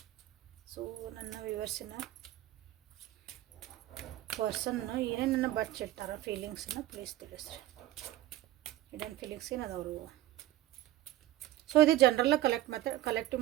So ನನ್ನ ವ್ಯೂವರ್ಸಿನ ಪರ್ಸನ್ನು ಏನೇನನ್ನು ಬಚ್ಚಿಟ್ಟಾರ ಫೀಲಿಂಗ್ಸನ್ನು ಪ್ಲೀಸ್ ತಿಳಿಸ್ರಿ. ಹಿಡನ್ ಫೀಲಿಂಗ್ಸ್ ಏನದವರು. ಸೊ ಇದು ಜನರಲ್ ಕಲೆಕ್ಟಿವ್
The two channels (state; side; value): quieter; left; 14.5 dB